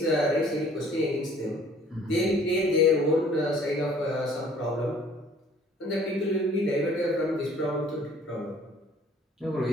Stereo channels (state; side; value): normal; both; correlation 0.55